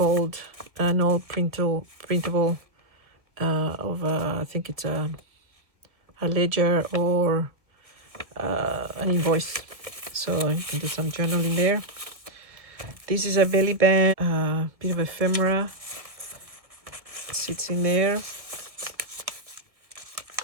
old printable of I think it's a ledger or an invoice. So I can do some journaling there. This is a belly band, bit of ephemera sits in there.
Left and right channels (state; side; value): late; left; 1.7 ms